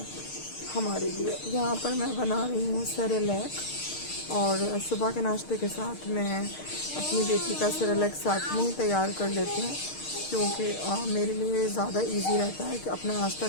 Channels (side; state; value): right; late; 6.5 ms